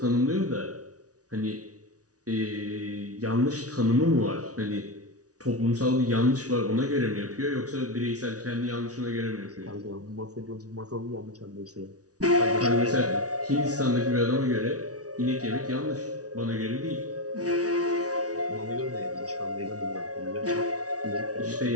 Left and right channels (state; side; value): late; left; 0.68 ms